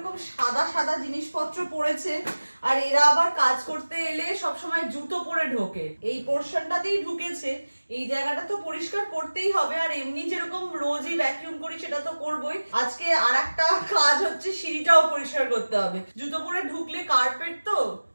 সাদা সাদা জিনিসপত্র পড়েছে, আর এরা আবার কাজ করতে এলে সবসময় জুতো পরে ঢোকে। এই পোর্শনটাতেই ঢুকেছে, এই জায়গাটা তো পরিষ্কার করতেই হবে। আর এমনি যেরকম রোজই ভ্যাকিউম করি সেটা তো করবোই, আজকে আর একটা কাজ হচ্ছে সিঁড়িটাও পরিষ্কার করতে হবে। জুতো পরে ঢুকলে কার্পেট তো,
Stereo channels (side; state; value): both; inverted; correlation -1.00